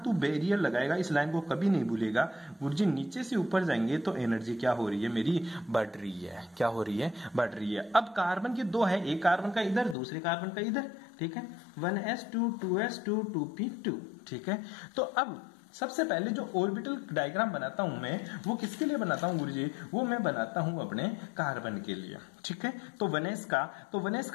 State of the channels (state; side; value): drops out; right; at 10.0 s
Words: बैरियर लगाएगा, इस लाइन को कभी नहीं भूलेगा गुरुजी। नीचे से ऊपर जाएंगे तो एनर्जी क्या हो रही है मेरी, बढ़ रही है, क्या हो रही है, बढ़ रही है। अब कार्बन के 2 है, एक कार्बन का इधर, दूसरे कार्बन का इधर, ठीक है, 1s2 2s2 2p2, ठीक है। तो अब सबसे पहले जो ऑर्बिटल डायग्राम बनाता हूं मैं, वो किसके लिए बनाता हूं गुरुजी, वो मैं बनाता हूं अपने कार्बन के लिए, ठीक है। तो 1s का, तो 1s